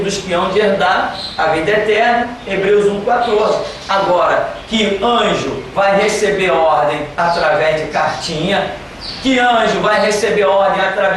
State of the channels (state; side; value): identical; both; correlation 1.00